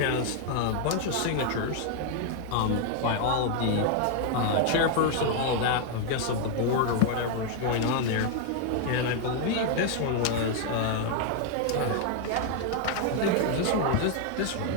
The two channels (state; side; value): different; both; correlation 0.01